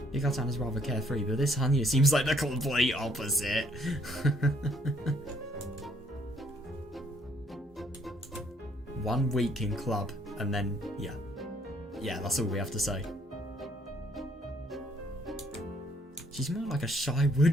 Rika-chan is rather carefree, but this Hanya seems like the complete opposite. One week in club, and then, yeah. Yeah, that's all we have to say. She's more like a shy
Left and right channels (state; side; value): normal; both; correlation 0.66